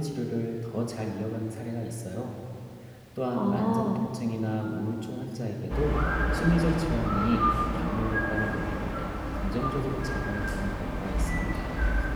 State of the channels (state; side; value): identical; both; correlation 1.00